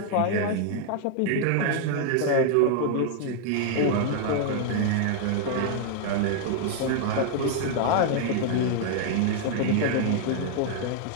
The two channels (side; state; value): both; different; correlation 0.00